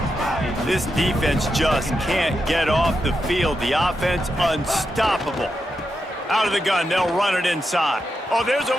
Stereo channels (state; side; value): normal; both; correlation 0.86